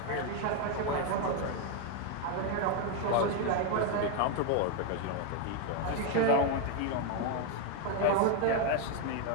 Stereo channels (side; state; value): both; different; correlation 0.01